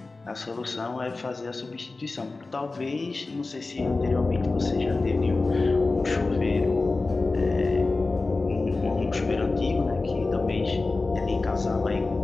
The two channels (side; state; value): right; quieter; 3.5 dB